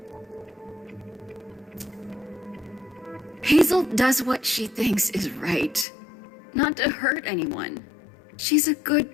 Hazel does what she thinks is right. Not to hurt anyone. She's a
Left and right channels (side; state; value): right; drops out; at 5.9 s